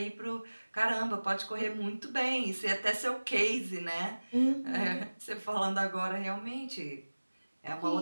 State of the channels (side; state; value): both; inverted; correlation -1.00